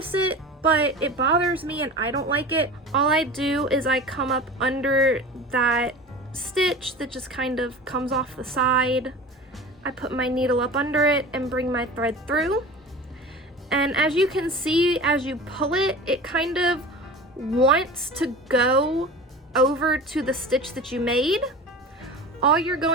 it, but it bothers me and I don't like it. All I do is I come up under that stitch that just kind of comes off the side. I put my needle up under it and bring my thread through. And as you can see, as you pull it, it kind of wants to go over to the stitch that you made, all you're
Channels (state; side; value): normal; both; correlation 0.35